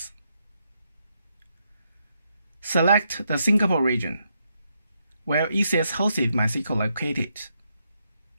Select the Singapore region, where ECS-hosted MySQL located.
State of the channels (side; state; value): both; inverted; correlation -0.79